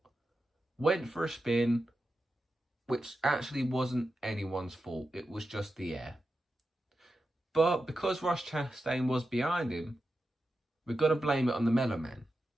went for a spin, which actually wasn't anyone's fault. It was just the air. But because Ross Chastain was behind him, we've got to blame it on the mellow man.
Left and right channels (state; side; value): normal; both; correlation 0.90